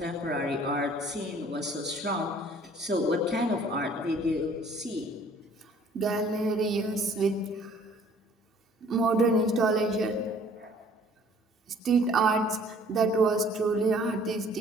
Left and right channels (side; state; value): both; normal; correlation 0.55